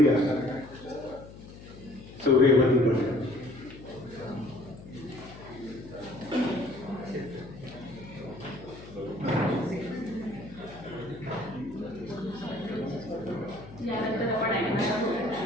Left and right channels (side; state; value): left; noise; hum, 16 dB below the sound